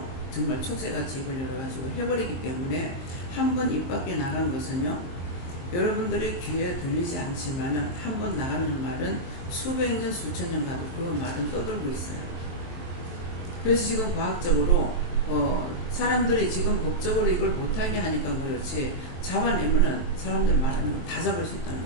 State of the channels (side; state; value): right; late; 23 ms